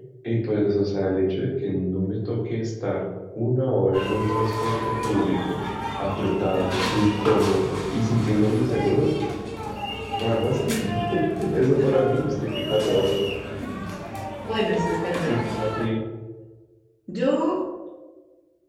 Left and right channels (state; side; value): identical; both; correlation 1.00